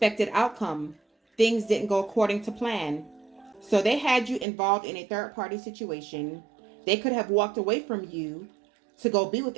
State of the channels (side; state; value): left; drops out; at 4.5 s